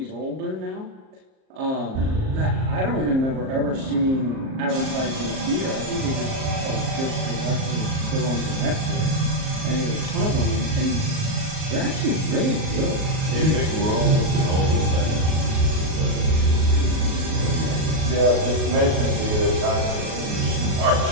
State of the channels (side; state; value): left; late; 38 ms